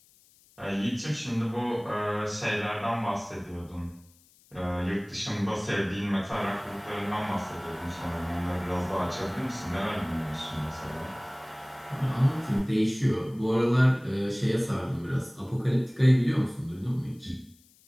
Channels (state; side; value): noise; left; hiss, 29 dB below the sound